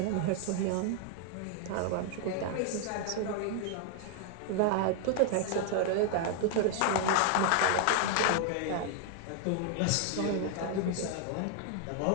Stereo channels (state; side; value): different; both; correlation 0.00